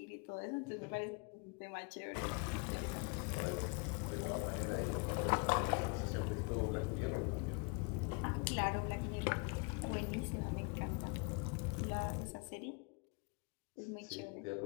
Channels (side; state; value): right; quieter; 32.7 dB